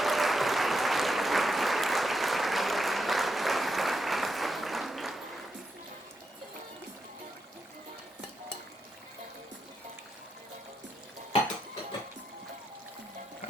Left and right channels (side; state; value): both; normal; correlation 0.84